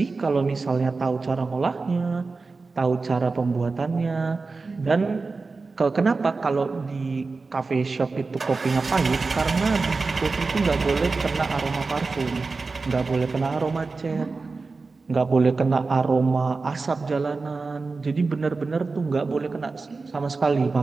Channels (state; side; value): quieter; left; 4.0 dB